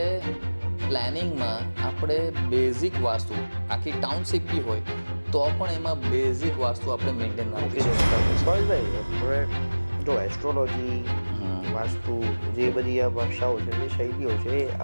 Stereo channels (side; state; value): both; inverted; correlation -1.00